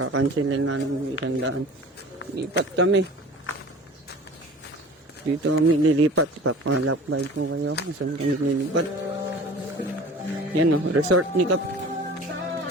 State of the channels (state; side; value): normal; both; correlation 0.42